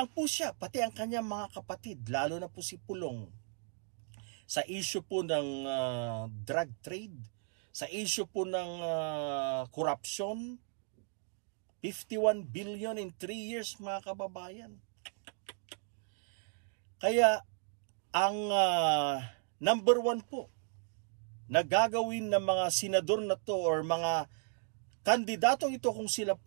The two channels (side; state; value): left; silent; 54 dB below the other